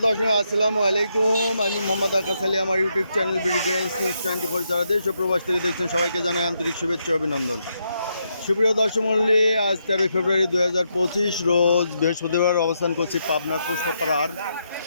দর্শক, আসসালামু আলাইকুম। আমি মোহাম্মদ আকাশ আলী। আমার ইউটিউব চ্যানেল বিডিগ্রেন্স নিউজ 24 যারা দেশ ও প্রবাস থেকে দেখছেন সবাইকে জানাই আন্তরিক শুভেচ্ছা অভিনন্দন। সুপ্রিয় দর্শক মণ্ডলী, আজ 13 ফেব্রুয়ারি 2025 রোজ বৃহস্পতিবার অবস্থান করছি পাবনার পুষ্পপাড়ার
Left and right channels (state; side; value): inverted; both; correlation -0.80